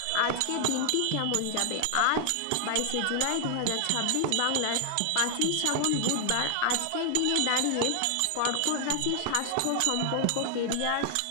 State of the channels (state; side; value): different; both; correlation 0.00